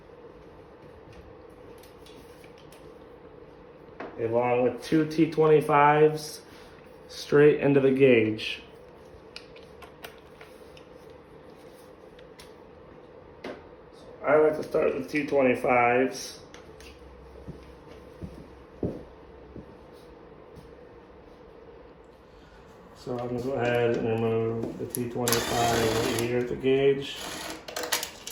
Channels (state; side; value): identical; both; correlation 1.00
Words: Along with two T25s straight into the gauge. So I like to start with T25s. So I'm going to go ahead and remove the T25 right here at the gauge.